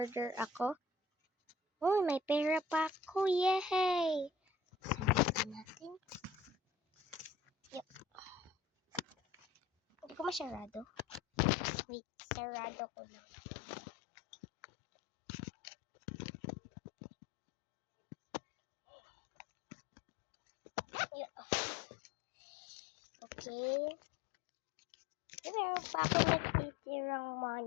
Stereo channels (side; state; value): right; drops out; at 11.5 s